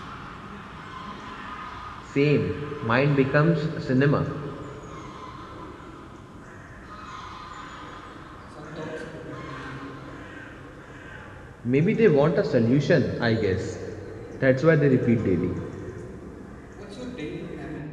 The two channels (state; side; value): identical; both; correlation 1.00